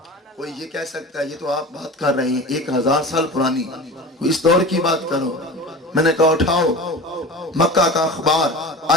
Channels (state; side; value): normal; both; correlation 0.33